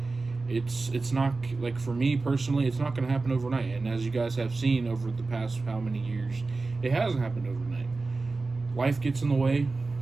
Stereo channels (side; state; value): left; quieter; 3.7 dB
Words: it's not like, for me personally, it's not going to happen overnight. And as you guys have seen over the past how many years, it hasn't happened overnight. Life gets in the way,